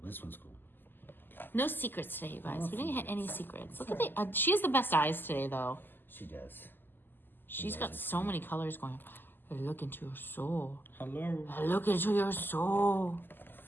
This one's cool. No secrets today, you guys. We didn't hit any secrets. Look at she has the best eyes today, though. She does. She's got so many colors going. I look into your soul. Hello. I look into your soul.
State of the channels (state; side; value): late; right; 0.093 ms